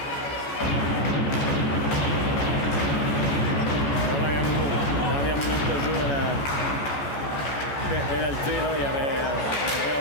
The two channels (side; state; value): right; late; 14 ms